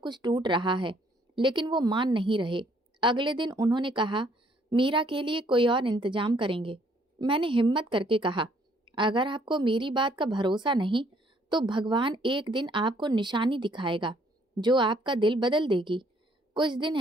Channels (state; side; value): normal; both; correlation 0.65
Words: टूट रहा है, लेकिन वो मान नहीं रहे। अगले दिन उन्होंने कहा, मीरा के लिए कोई और इंतजाम करेंगे। मैंने हिम्मत करके कहा, अगर आपको मेरी बात का भरोसा नहीं तो भगवान एक दिन आपको निशानी दिखाएगा जो आपका दिल बदल देगी। कुछ दिन